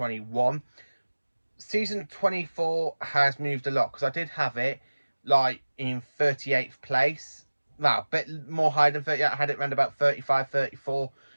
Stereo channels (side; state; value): both; inverted; correlation -1.00